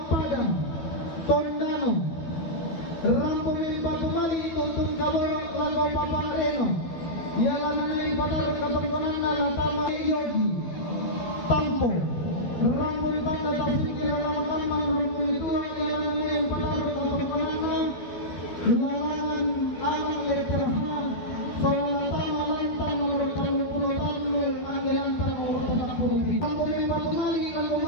Tondano Rampumin Batumali Tutun Kaborok Lago Papa Reno. Ialah nanay patarong katungkunan na Latama Yogi Tampo Rampun Tanda Tasukir Ramakaman Rampun itu ialah nanay patarong katungkunan na Lalangan Alang Letter H Solatama Lentang nomor 30 Anggilan nomor 40. Rampumin Batumali Lago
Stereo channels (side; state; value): right; late; 12 ms